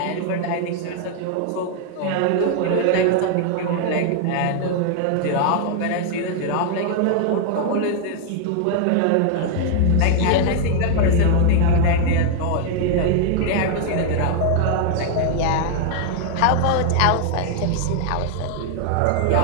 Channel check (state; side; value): different; both; correlation 0.00